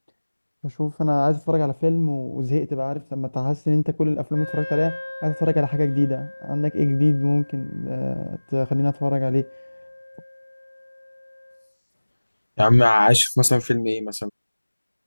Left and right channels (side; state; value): both; inverted; correlation -1.00